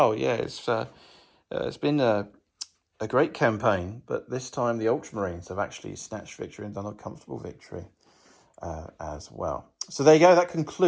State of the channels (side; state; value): both; identical; correlation 1.00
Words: Yeah, it's been a great campaign, but this time the Ultramarines have actually snatched victory and done a comfortable victory as well. So there you go. That